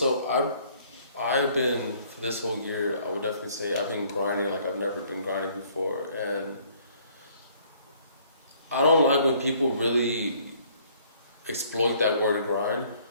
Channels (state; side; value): inverted; both; correlation -0.61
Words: I've been, for this whole year, I would definitely say I've been grinding like I've never been grinding before. And I don't like when people really exploit that word grind